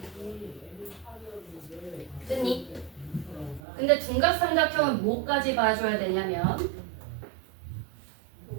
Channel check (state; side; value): drops out; left; at 3.6 s